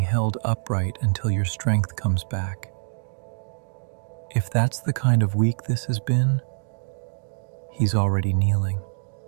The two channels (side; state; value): left; silent; digital silence